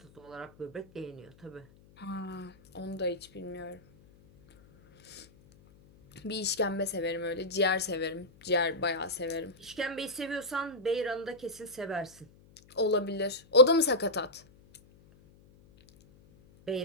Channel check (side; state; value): left; noise; hum, 26 dB below the sound